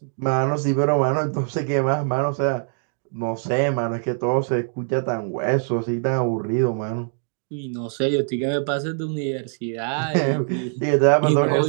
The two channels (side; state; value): left; silent; digital silence